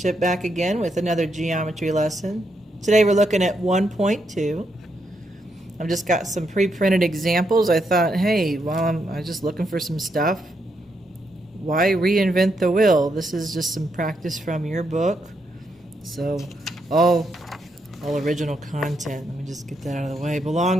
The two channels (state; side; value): normal; both; correlation 0.80